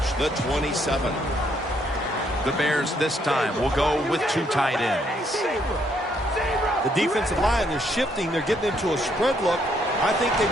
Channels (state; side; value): normal; both; correlation 0.71